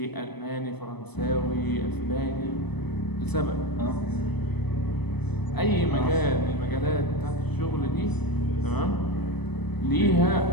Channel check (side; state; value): right; late; 0.99 ms